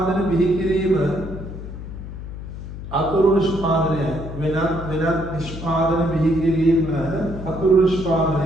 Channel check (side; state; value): left; noise; hum, 10 dB below the sound